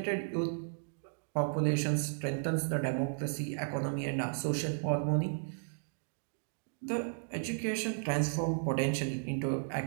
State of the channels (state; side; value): silent; left; digital silence